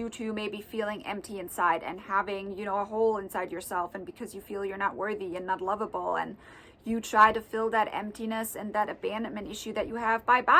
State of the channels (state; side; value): identical; both; correlation 1.00